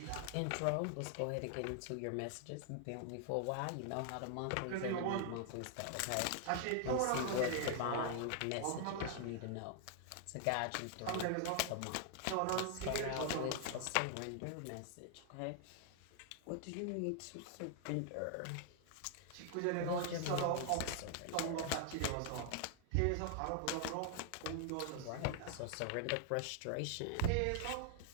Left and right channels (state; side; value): different; both; correlation 0.00